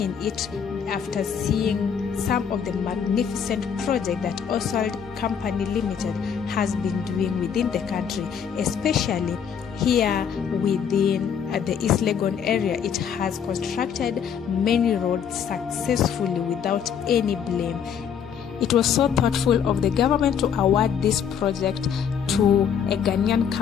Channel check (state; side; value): quieter; right; 7.7 dB